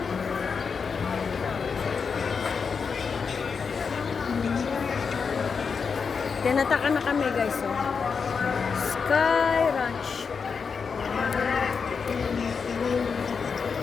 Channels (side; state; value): right; quieter; 5.7 dB